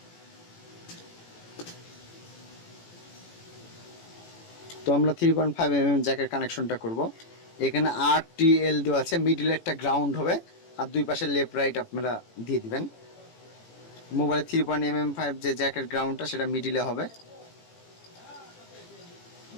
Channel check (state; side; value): late; right; 18 ms